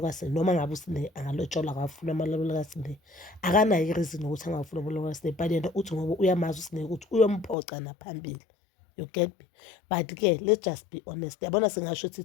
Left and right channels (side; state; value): right; drops out; at 7.6 s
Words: kaSihle noma ngabe uSihle angalotsholwa akafuna amalobolo kaSihle. Akanayo ireason ukuthi angafuna amalobolo kaSihle, but yena uthi ngoba uyamazi uSihle ukuthi uyomphoca naphambili. You get me? But ke let's just be honest. Yabona singasho